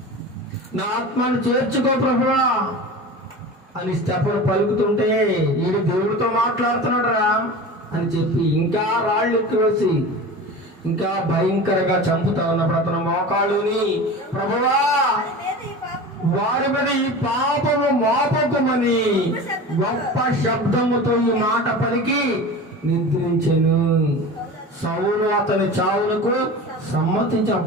నా ఆత్మను చేర్చుకో ప్రభువా అని స్టెఫను పలుకుతుంటే ఈడు దేవుడితో మాట్లాడుతున్నాడు రా అని చెప్పి ఇంకా రాళ్ళు ఎక్కువేసి ఇంకా భయంకరంగా చంపుతా ఉన్నప్పుడు అతను మోకాళ్ళుని, ప్రభువా వారి మీద ఈ పాపము మోపకమని గొప్ప శబ్దముతో ఈ మాట పలికి నిద్రించెను. సౌలు అతని చావునకు సమ్మతించి,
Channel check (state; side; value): normal; both; correlation 0.33